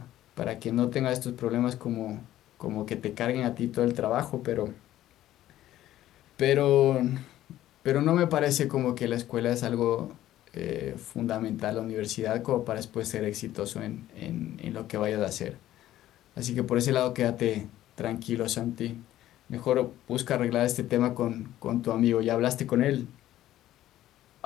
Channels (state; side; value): quieter; right; 13.6 dB